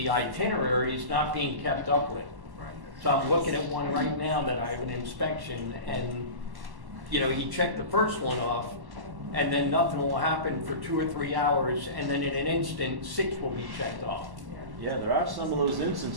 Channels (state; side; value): late; left; 1.1 ms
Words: itinerary is not being kept up with. So I'm looking at one right now that I have an inspection, and, you know, he checked the first one off, and then nothing will happen for 2 or 3 hours, and then in an instant, 6 will be checked off. Yeah, there are some of those